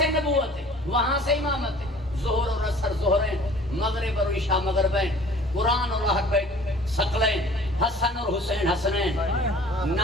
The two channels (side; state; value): both; normal; correlation 0.49